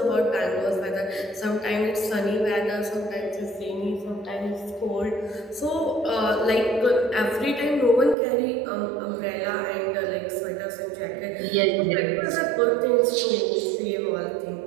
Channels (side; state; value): left; drops out; at 8.2 s